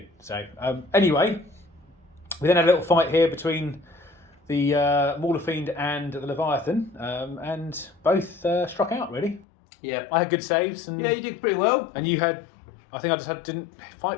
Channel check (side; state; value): right; drops out; at 9.5 s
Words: So anyway, we then had a little fight here between the Mauler Fiend and the Leviathan, and both struck out really. Yeah. I had good saves, and Yeah, you did pretty well. And you had, I think I just didn't